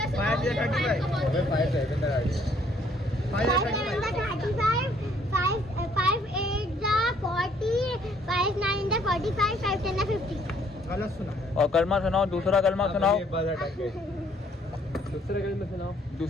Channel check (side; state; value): both; normal; correlation 0.64